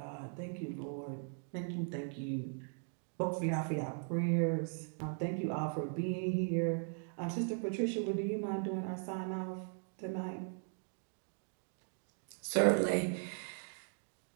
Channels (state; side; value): silent; left; 52 dB below the other